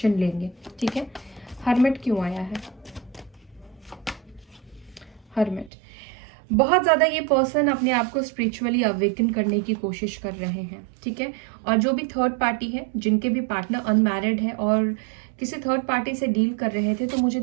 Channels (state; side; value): drops out; left; at 5.7 s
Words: लेंगे, ठीक है। हर्मिट क्यों आया है? हर्मिट, बहुत ज़्यादा ये पर्सन अपने आप को स्पिरिचुअली अवेकन करने की कोशिश कर रहे हैं, ठीक है। और जो भी थर्ड पार्टी है, जिनके भी पार्टनर अनमैरिड है और किसी थर्ड पार्टी से डील कर रहे थे, तो मुझे